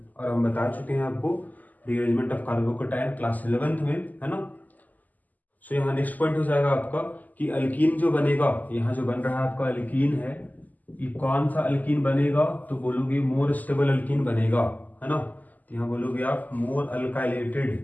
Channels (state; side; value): late; right; 0.081 ms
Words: और हम बता चुके हैं आपको rearrangement of carbocation class 11th में, है ना। सो यहाँ नेक्स्ट पॉइंट हो जाएगा आपका कि अल्कीन जो बनेगा, यहाँ जो बन रहा है आपका अल्कीन है, ये कौन सा अल्कीन बनेगा, तो बोलोगे मोर स्टेबल अल्कीन बनेगा, है ना। तो यहाँ बोलोगे आप more